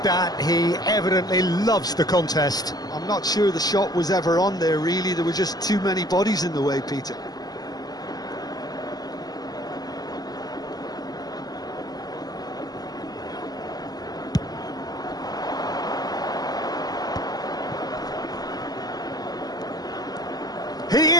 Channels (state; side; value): late; right; 0.19 ms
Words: that. He evidently loves the contest. I'm not sure the shot was ever on there, really. There were just too many bodies in the way, Peter. He